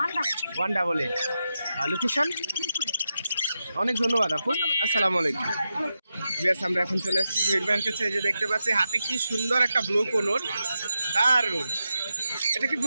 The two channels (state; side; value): inverted; both; correlation -0.88